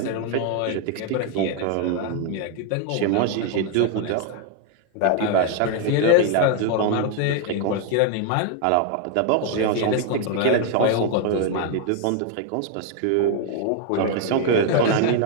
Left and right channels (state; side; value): different; both; correlation 0.00